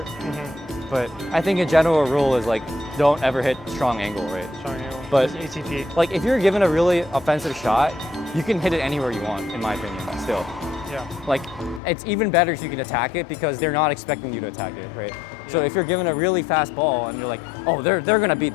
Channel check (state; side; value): drops out; right; at 11.8 s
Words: But I think a general rule is like don't ever hit strong angle, right? Strong angle. But just ATP. like if you're given a really offensive shot, you can hit it anywhere you want, in my opinion. Still. Like it's even better if you can attack it because they're not expecting you to attack it, right? So if you're given a really fast ball and you're like, oh, they're gonna hit